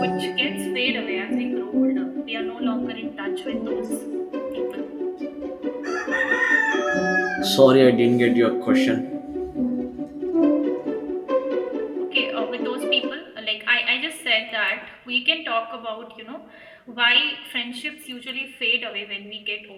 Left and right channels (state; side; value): identical; both; correlation 1.00